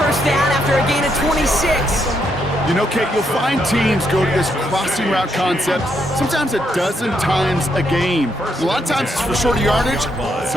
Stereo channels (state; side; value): normal; both; correlation 0.77